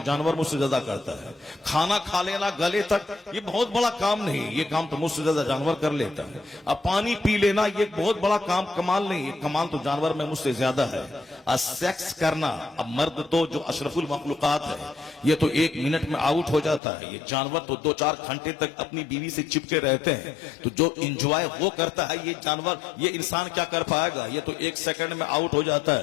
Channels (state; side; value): drops out; right; at 16.8 s